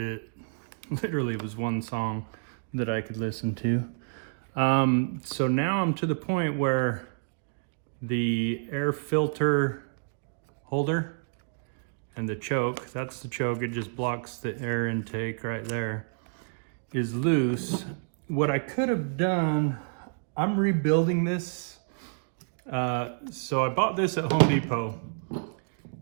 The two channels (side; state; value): left; silent; digital silence